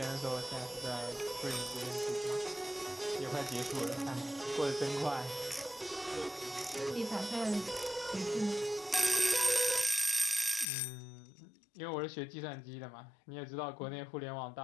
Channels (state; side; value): drops out; right; at 10.7 s